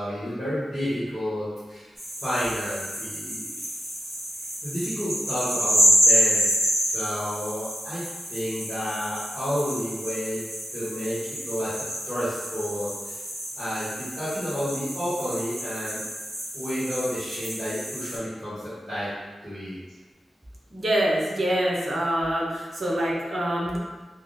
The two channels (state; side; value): normal; both; correlation 0.87